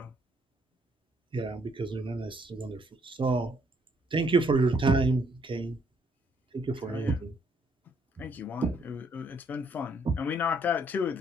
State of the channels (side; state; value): both; normal; correlation 0.68